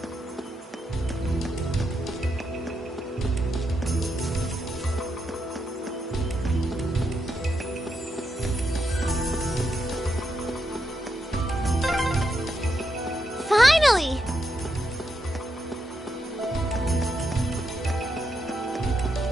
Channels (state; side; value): normal; both; correlation 0.82